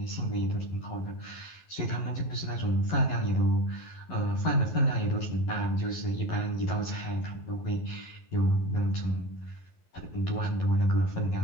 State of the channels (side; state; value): right; late; 11 ms